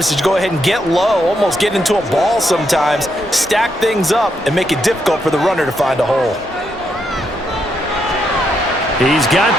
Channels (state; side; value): normal; both; correlation 0.79